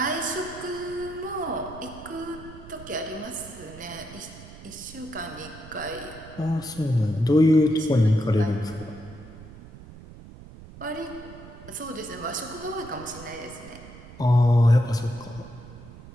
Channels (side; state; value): right; noise; rumble, 17 dB below the sound